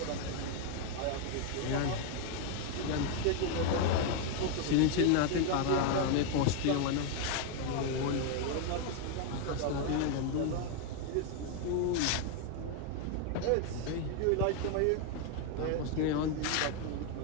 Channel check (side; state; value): both; different; correlation 0.01